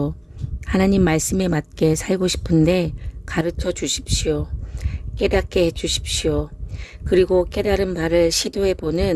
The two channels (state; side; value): identical; both; correlation 1.00